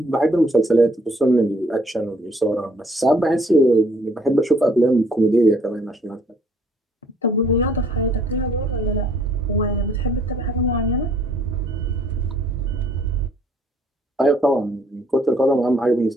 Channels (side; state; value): both; normal; correlation 0.63